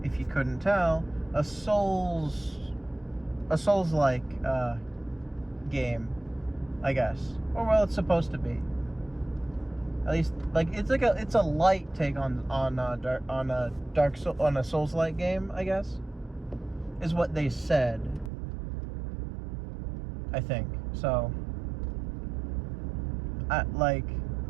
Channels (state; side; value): drops out; left; at 18.3 s